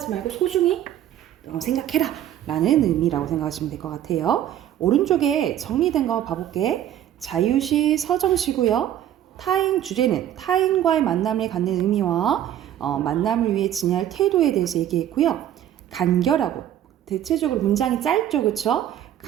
말고 소중히 생각해라 라는 의미라고 생각하시면 될 것 같아요. 오른쪽에 정리된 거 봐볼게. 자유시, 서정시고요. 타인 주제는 타인과의 만남을 갖는 의미와 만남을 위해 지니할 태도에 대해서 얘기했고요. 간결하고 대체적으로 문장이 짧죠, 그쵸?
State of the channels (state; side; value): quieter; left; 11.3 dB